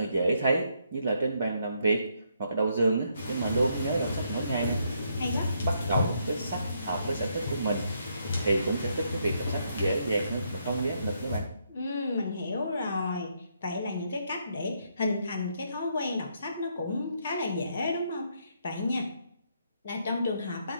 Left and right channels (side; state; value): both; inverted; correlation -0.75